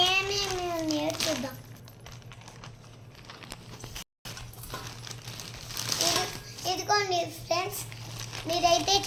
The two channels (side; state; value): both; identical; correlation 1.00